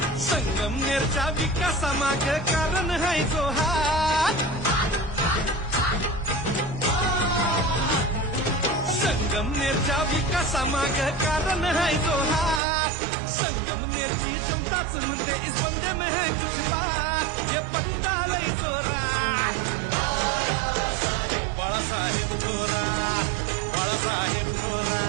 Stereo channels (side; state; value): left; drops out; at 12.6 s